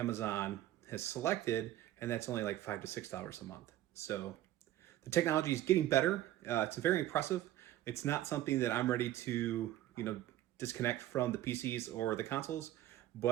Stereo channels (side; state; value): left; quieter; 13.8 dB